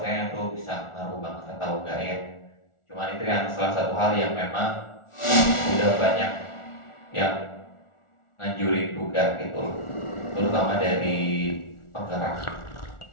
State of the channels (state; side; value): late; right; 1.4 ms